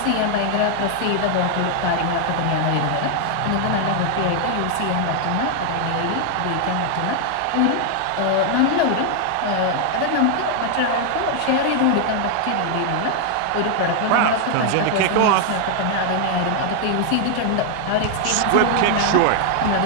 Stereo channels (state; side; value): different; both; correlation 0.00